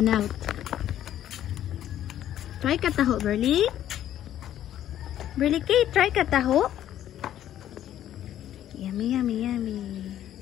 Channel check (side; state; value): right; quieter; 11.6 dB